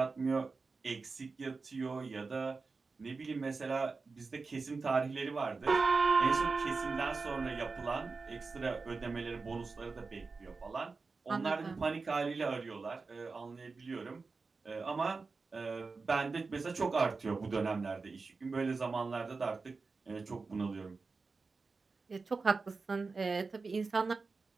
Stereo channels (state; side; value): quieter; left; 4.2 dB